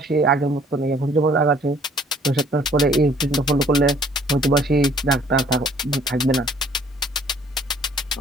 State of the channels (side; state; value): both; normal; correlation 0.59